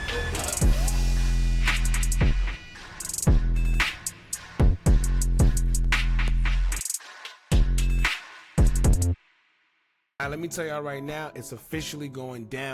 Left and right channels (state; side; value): identical; both; correlation 1.00